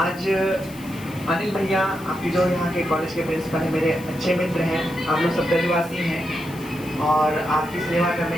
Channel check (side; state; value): left; noise; hiss, 20 dB below the sound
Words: अनिल भैया आपकी जो यहाँ के कॉलेज के प्रिंसिपल हैं, मेरे अच्छे मित्र हैं, आप लोग सब ब्रजवासी हैं और आपकी सेवा करने